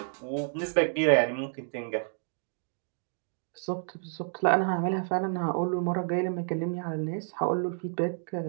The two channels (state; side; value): silent; left; digital silence